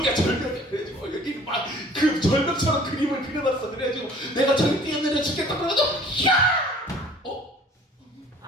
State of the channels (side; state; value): both; normal; correlation 0.50